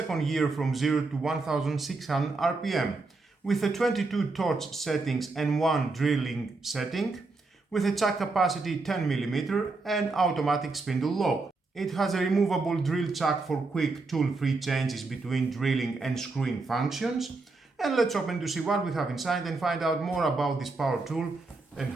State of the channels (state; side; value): quieter; left; 3.6 dB